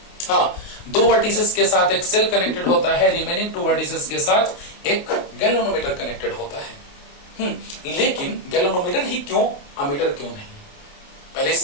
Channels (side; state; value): right; late; 28 ms